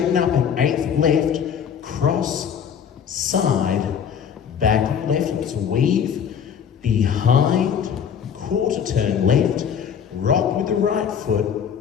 up an 8th left, cross, side, back on left. Let's weave, behind, quarter turn left, rock with the right foot,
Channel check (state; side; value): quieter; right; 7.8 dB